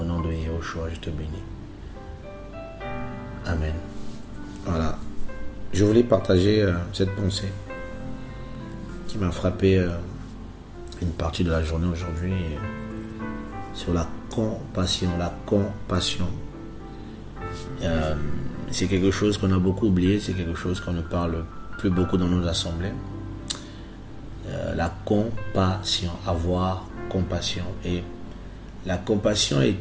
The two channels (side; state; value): both; identical; correlation 1.00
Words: nom de Yehoshua, je te bénis. Amen. Voilà. Je voulais partager cette pensée qui m'a frappé une partie de la journée aujourd'hui sur la compassion. La compassion. C'est quelque chose qu'on a beaucoup oublié, c'est quelque chose qu'on ne parle plus beaucoup dans nos assemblées. La compassion, avoir compassion. Et la compassion